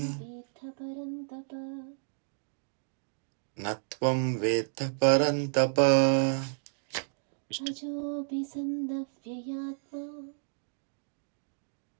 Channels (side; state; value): left; silent; digital silence